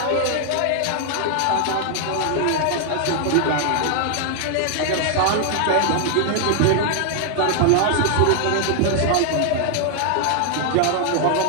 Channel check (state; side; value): different; both; correlation 0.00